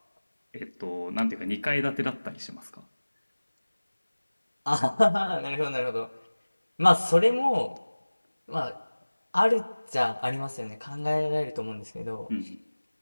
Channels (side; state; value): both; inverted; correlation -1.00